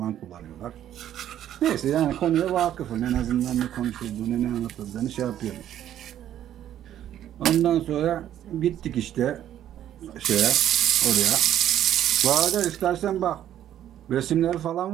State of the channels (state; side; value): quieter; left; 11.3 dB